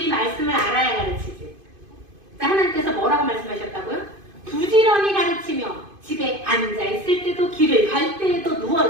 말씀을 알아야 가르치지. 자, 하나님께서 뭐라고 말씀하셨다고요? 부지런히 가르치며 집에 앉아있을 때도, 길을 갈 때에도,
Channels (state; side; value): late; left; 2.5 ms